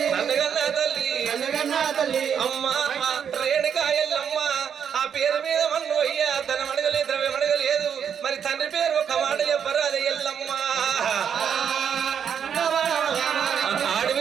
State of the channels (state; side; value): quieter; left; 7.9 dB